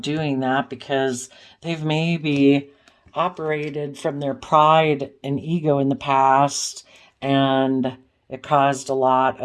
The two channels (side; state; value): both; identical; correlation 1.00